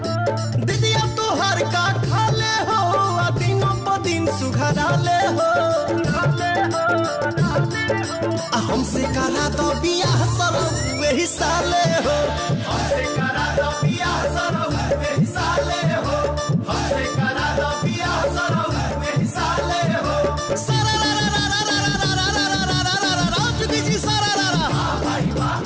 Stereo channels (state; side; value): identical; both; correlation 1.00